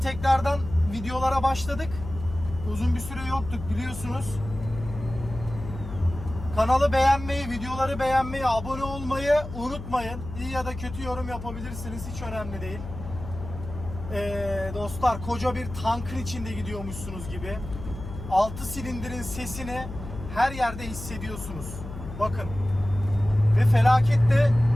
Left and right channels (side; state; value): left; noise; hum, 10 dB below the sound